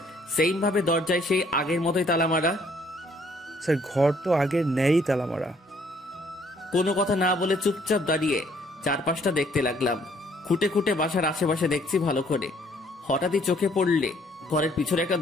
সেইম ভাবে দরজায় সেই আগের মতোই তালা মারা। স্যার ঘর তো আগের ন্যায়ই তালা মারা। কোনো কথা না বলে চুপচাপ দাঁড়িয়ে চারপাশটা দেখতে লাগলাম। খুঁটে খুঁটে বাসার আশেপাশে দেখছি ভালো করে। হঠাৎই চোখে পড়লে ঘরের পিছনে একটা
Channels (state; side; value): normal; both; correlation 0.63